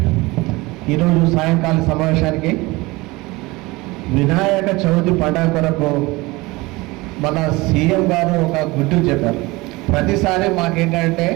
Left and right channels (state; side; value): quieter; left; 22.2 dB